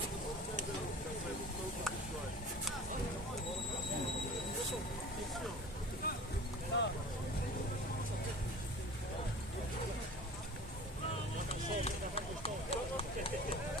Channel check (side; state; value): both; normal; correlation 0.40